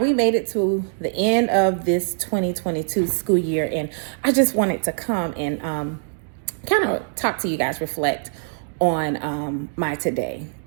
made it to the end of this 2022 school year, and I just wanted to come and kind of talk to you guys, reflect on my today.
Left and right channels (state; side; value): silent; left; digital silence